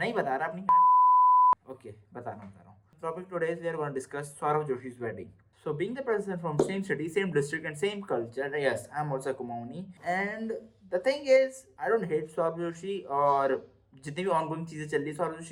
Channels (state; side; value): identical; both; correlation 1.00